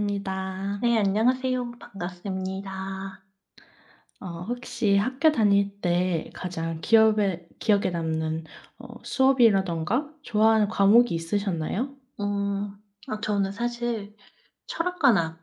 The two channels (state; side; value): identical; both; correlation 1.00